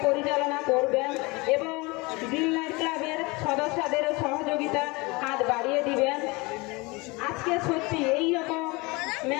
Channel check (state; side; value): quieter; right; 25.3 dB